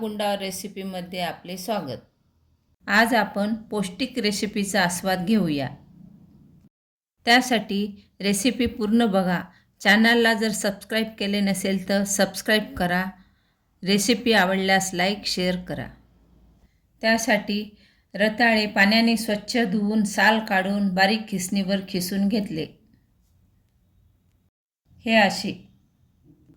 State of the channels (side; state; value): both; identical; correlation 1.00